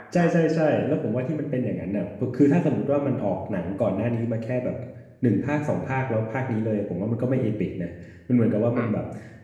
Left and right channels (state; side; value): identical; both; correlation 1.00